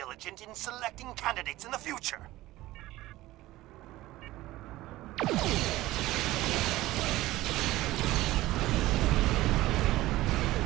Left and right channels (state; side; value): quieter; left; 17.1 dB